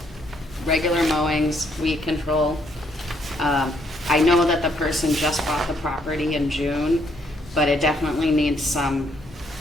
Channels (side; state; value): both; normal; correlation 0.71